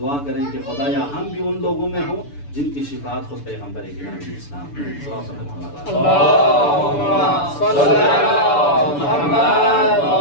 کریں کہ خدایا ہم بھی ان لوگوں میں ہوں جن کی شفاعت خود پیغمبر گرامی اسلام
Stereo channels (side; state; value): right; late; 6.9 ms